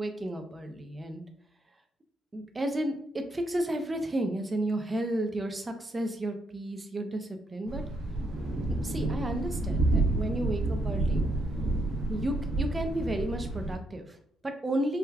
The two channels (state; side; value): normal; both; correlation 0.77